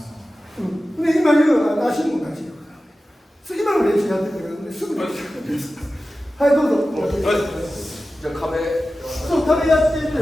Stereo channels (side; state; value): both; normal; correlation 0.95